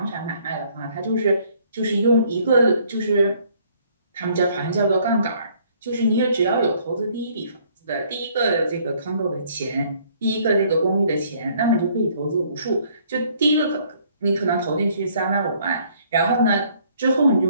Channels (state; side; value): inverted; both; correlation -0.62